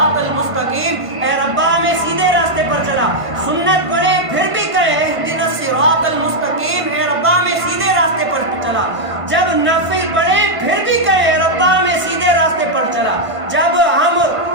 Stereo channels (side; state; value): left; late; 1.5 ms